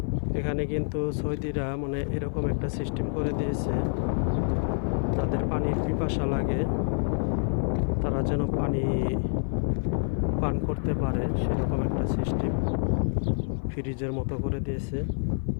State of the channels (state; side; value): silent; right; 56 dB below the other